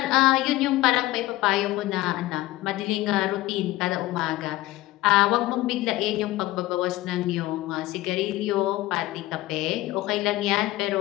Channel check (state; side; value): quieter; right; 17.2 dB